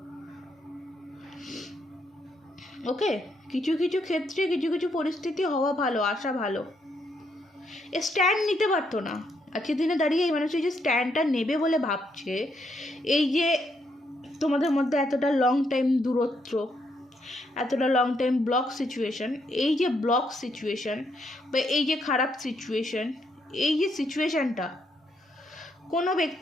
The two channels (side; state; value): both; normal; correlation 0.76